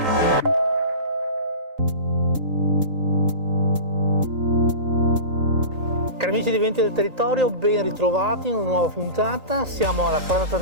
amici di Venti del Territorio, ben ritrovati in una nuova puntata. Siamo alla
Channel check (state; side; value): late; left; 3.8 ms